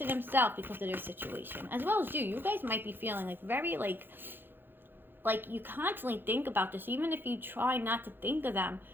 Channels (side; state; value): left; late; 0.099 ms